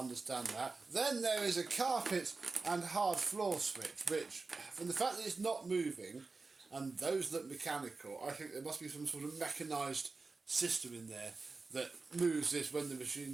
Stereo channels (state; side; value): quieter; left; 4.0 dB